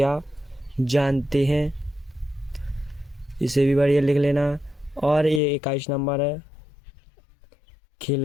जानते हैं, इसे भी बढ़िया लिख लेना। और ये 21 नंबर है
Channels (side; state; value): right; drops out; at 5.4 s